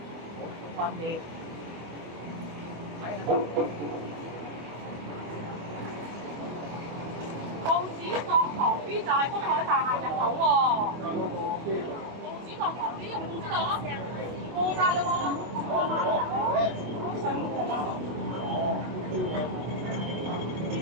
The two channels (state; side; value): late; left; 25 ms